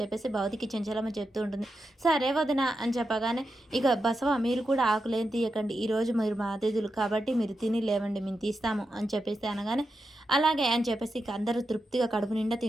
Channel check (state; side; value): normal; both; correlation 0.88